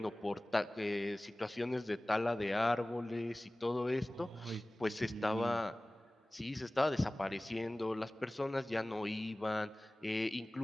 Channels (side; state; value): both; normal; correlation 0.98